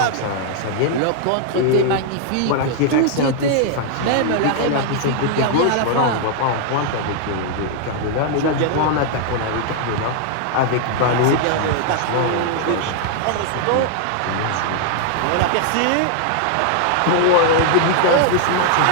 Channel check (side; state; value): both; different; correlation 0.00